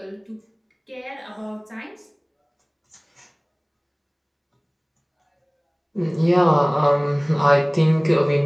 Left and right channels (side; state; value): both; identical; correlation 1.00